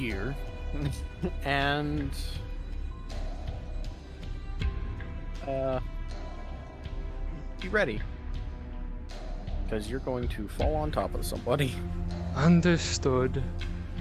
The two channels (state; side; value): identical; both; correlation 1.00